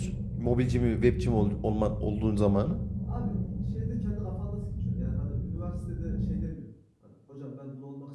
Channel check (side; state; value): both; identical; correlation 1.00